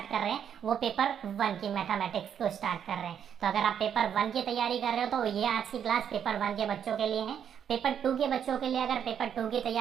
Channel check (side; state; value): left; quieter; 8.5 dB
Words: कर रहे हैं, वो पेपर 1 की मैथमेटिक्स को स्टार्ट कर रहे हैं। तो अगर आप पेपर 1 की तैयारी कर रहे हो तो ये आज की क्लास पेपर 1 के बच्चों के लिए है। पेपर 2 के बच्चों के लिए अगर पेपर 2 की